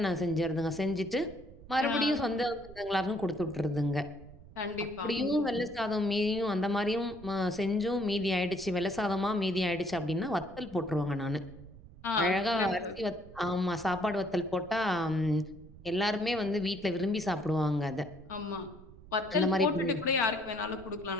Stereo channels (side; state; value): right; noise; rumble, 19 dB below the sound